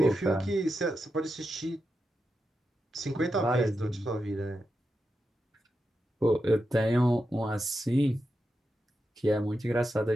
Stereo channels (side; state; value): both; normal; correlation 0.88